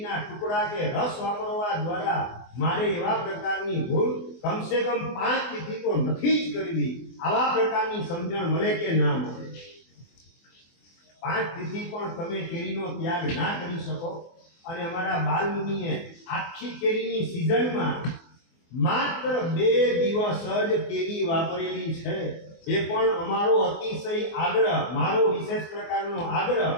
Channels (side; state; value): right; late; 24 ms